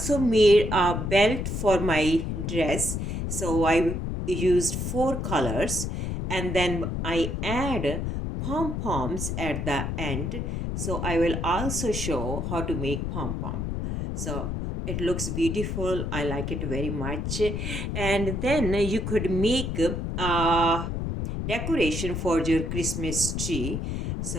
made a belt for my dress. So I used four colors and then I add pom-poms at the end. So I will also show how to make pom-pom. So it looks beautiful. I like it very much. And then you could make decoration for your Christmas tree.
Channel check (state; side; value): noise; left; rumble, 2 dB below the sound